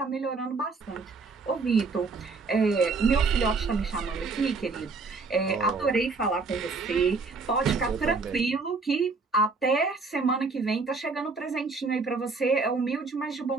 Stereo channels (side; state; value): left; quieter; 4.1 dB